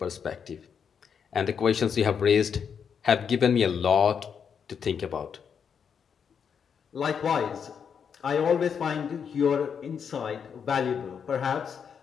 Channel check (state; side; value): quieter; right; 7.0 dB